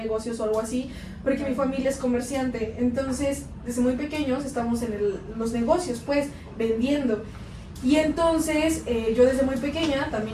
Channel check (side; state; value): both; identical; correlation 1.00